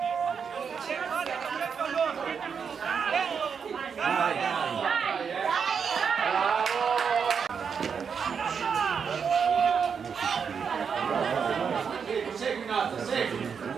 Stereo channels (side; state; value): left; quieter; 6.5 dB